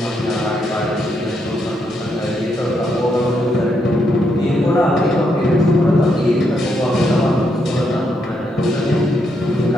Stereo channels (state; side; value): normal; both; correlation 0.78